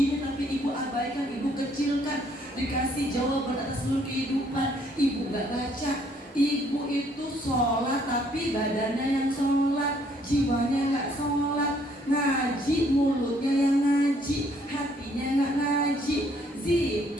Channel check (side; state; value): both; normal; correlation 0.65